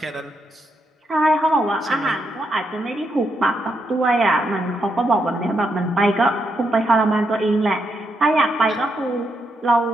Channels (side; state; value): both; normal; correlation 0.80